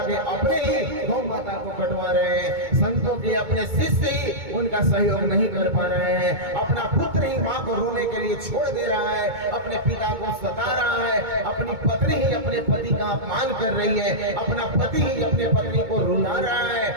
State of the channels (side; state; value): left; late; 2.2 ms